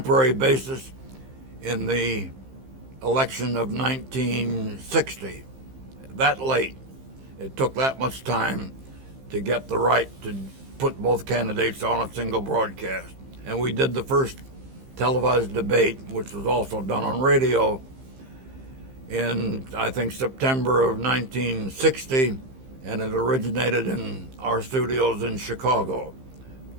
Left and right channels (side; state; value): left; late; 15 ms